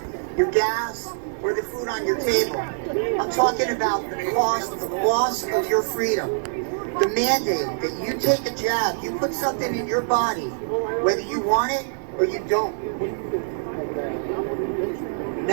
your gas, or the food on your table. I'm talking about the cost of the loss of your freedom. The mandate that you take a jab, you put something in your body, whether you want it or you don't.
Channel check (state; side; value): silent; left; 62 dB below the other